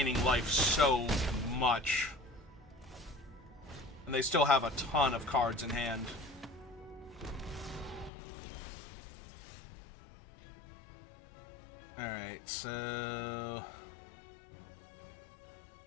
life so much. And they still have a ton of cards in hand. Alright, so...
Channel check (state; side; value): drops out; right; at 8.1 s